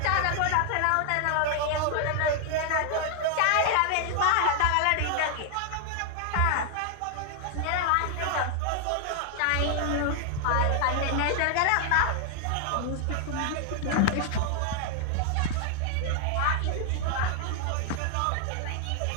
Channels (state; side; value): different; both; correlation 0.00